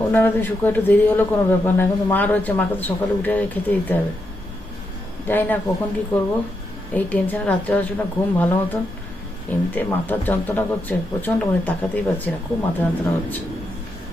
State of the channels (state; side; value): normal; both; correlation 0.83